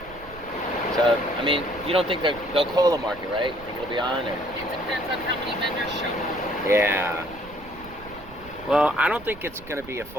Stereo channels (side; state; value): right; noise; rumble, 19 dB below the sound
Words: So, I mean, you don't think they'll call the market, right? Think it'll be on? Or? It depends on how many vendors show up. Yeah. Well, I don't think it's going to be a